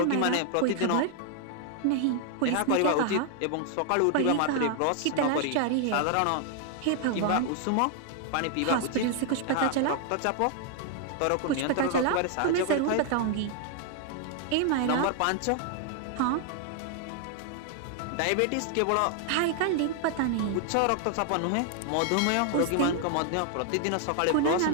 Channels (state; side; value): different; both; correlation 0.00